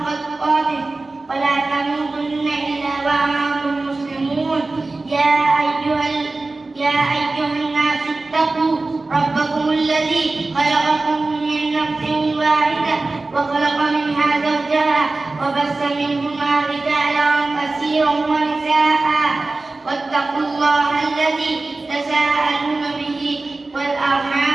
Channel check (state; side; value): quieter; left; 3.3 dB